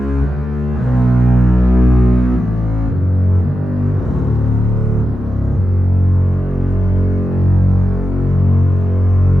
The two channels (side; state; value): both; normal; correlation 0.90